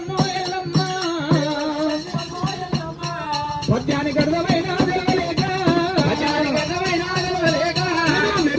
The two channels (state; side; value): identical; both; correlation 1.00